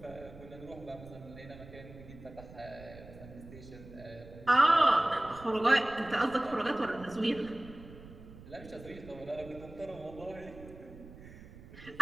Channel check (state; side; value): noise; right; rumble, 17 dB below the sound